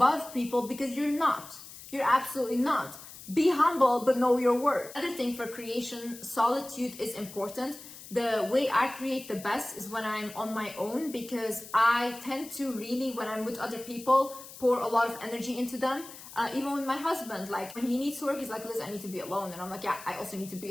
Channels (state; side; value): noise; left; hiss, 16 dB below the sound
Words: people, because you're not. You're absolutely not. Be humble, but know your worth. Another thing for creation, solitude is important. The way I create the best is when I'm on my own, because I tend to really, when I'm with other people, pour a lot of energy into them. Even with my husband, like when he needs to work, he's like, Liz, I need to be alone. And I'm like, yeah, I also need to be